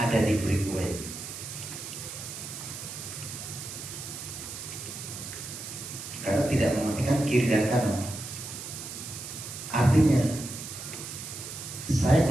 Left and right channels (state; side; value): noise; right; hiss, 9 dB below the sound